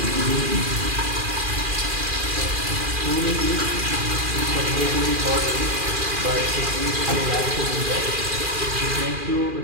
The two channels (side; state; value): left; late; 2.4 ms